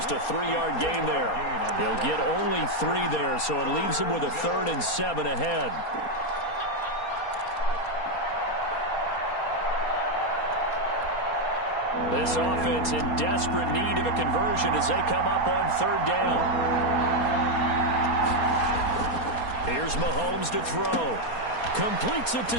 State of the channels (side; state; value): right; late; 4.2 ms